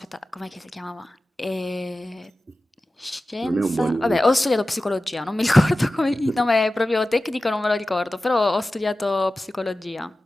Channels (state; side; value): normal; both; correlation 0.95